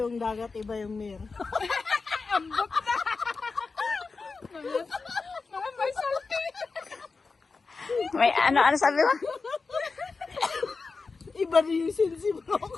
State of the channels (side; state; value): right; quieter; 4.4 dB